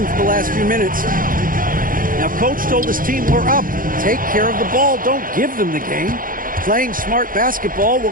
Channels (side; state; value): left; late; 0.40 ms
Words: for the last few minutes. Now, Coach told his team, we're up. Take care of the ball. Don't give them the game. Playing smart basketball will